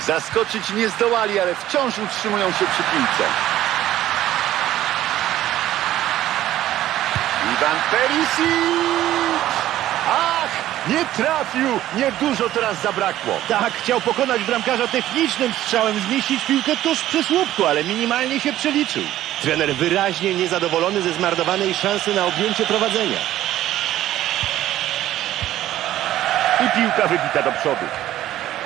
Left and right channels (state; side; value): quieter; left; 13.6 dB